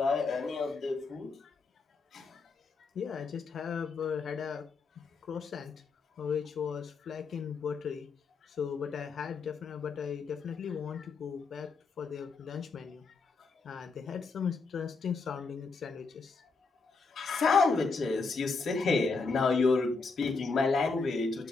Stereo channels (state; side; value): quieter; right; 4.4 dB